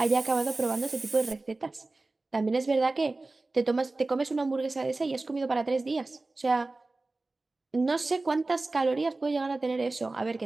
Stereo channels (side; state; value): left; quieter; 3.2 dB